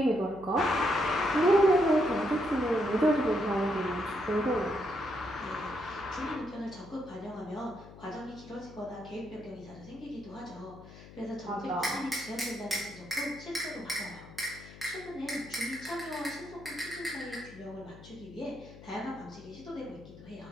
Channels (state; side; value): noise; left; hum, 17 dB below the sound